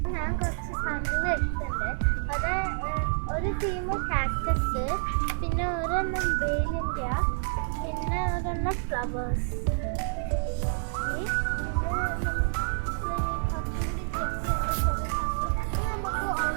ഞാൻ കുറച്ച് സാധനങ്ങൾ എടുത്തിട്ടുണ്ട്. അത് ഒരു തീം കാക്ടസ്, പിന്നെ ഒരെണ്ണം വേലിൻ്റെ, പിന്നെ ഒരെണ്ണം ഫ്ലവേഴ്സ്. ഓക്കെ, പിന്നെ നമ്മൾ ഇനി കുറച്ചും കൂടി ചെക്ക് ചെയ്യാണ്ട് കുറേ സാധനങ്ങൾ. ഇത് നമുക്ക്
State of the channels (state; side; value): silent; left; 59 dB below the other